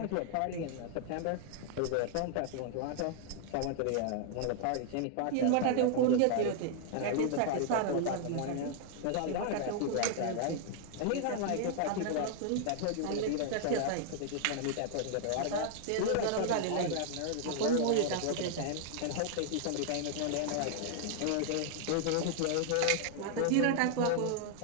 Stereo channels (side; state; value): both; different; correlation 0.00